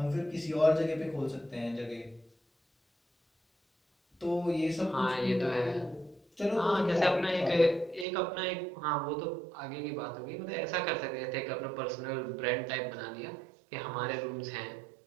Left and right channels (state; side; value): drops out; left; at 8.1 s